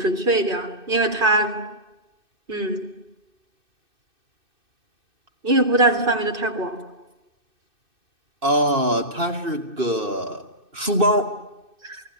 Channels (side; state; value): left; late; 2.6 ms